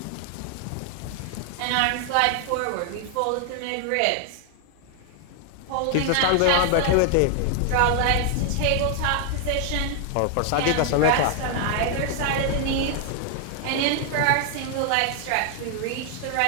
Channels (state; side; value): different; both; correlation 0.00